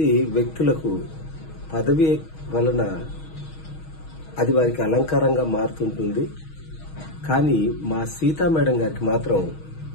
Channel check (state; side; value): late; right; 6.3 ms